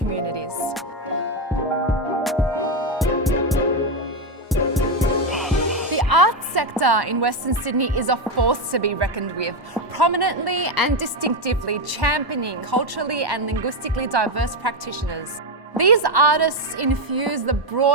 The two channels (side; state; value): both; normal; correlation 0.07